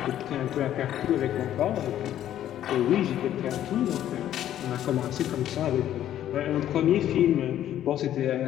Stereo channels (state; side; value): quieter; right; 11.6 dB